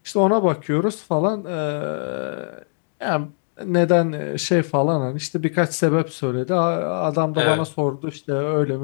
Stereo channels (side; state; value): right; silent; digital silence